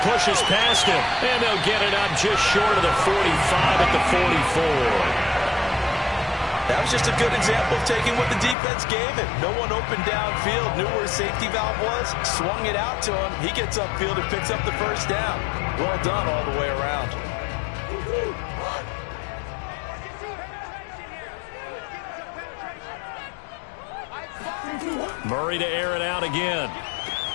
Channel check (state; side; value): drops out; right; at 8.6 s